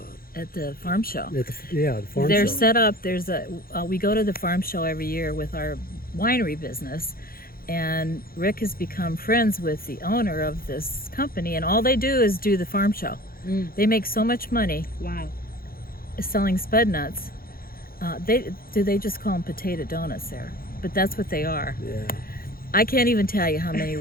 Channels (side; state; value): right; late; 0.43 ms